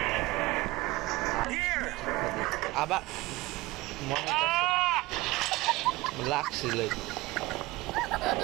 Here! আবার মনে লাগছিল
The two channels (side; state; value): left; quieter; 20.4 dB